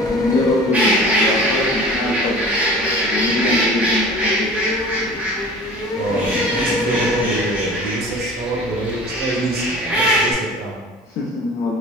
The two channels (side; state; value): both; normal; correlation 0.42